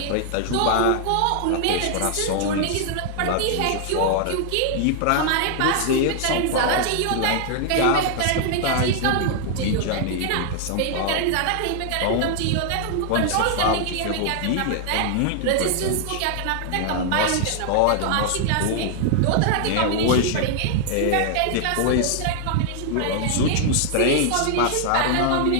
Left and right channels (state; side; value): different; both; correlation 0.00